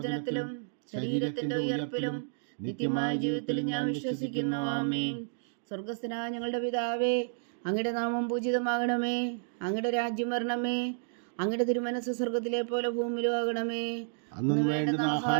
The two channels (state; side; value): silent; left; digital silence